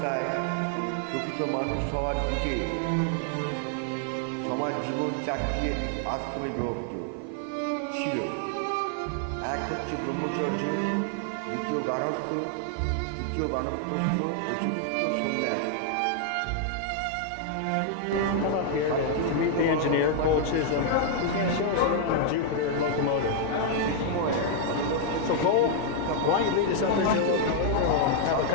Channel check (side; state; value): both; different; correlation 0.00